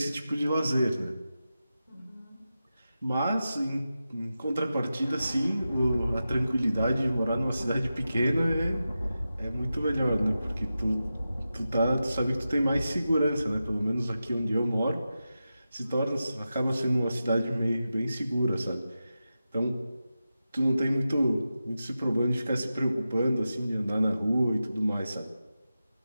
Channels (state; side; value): inverted; both; correlation -0.92